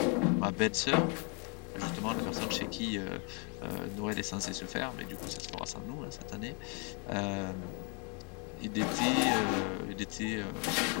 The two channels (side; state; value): right; quieter; 36.0 dB